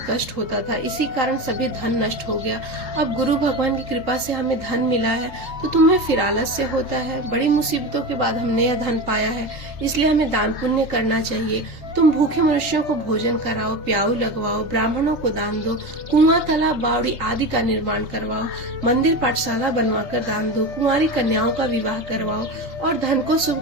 कष्ट होता था, इसी कारण सभी धन नष्ट हो गया। अब गुरु भगवान की कृपा से हमें धन मिला है तो तुम्हें फिर आलस्य होता है। बड़ी मुसीबतों के बाद हमने यह धन पाया है, इसलिए हमें दान पुण्य करना चाहिए। तुम भूखे मनुष्यों को भोजन कराओ, प्याऊ लगवाओ, ब्राह्मणों को दान दो, कुआं, तालाब, बावड़ी आदि का निर्माण करवाओ, मंदिर पाठशाला बनवाकर दान दो, कुंवारी कन्याओं का विवाह करवाओ और धन को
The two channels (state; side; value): late; left; 3.3 ms